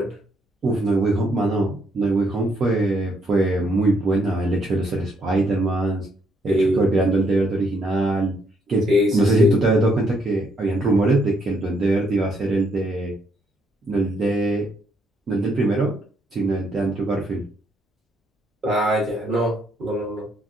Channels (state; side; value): normal; both; correlation 0.72